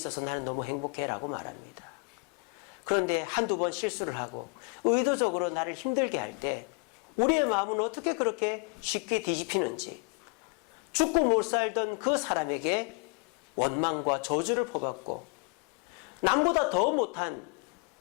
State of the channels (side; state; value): right; quieter; 32.7 dB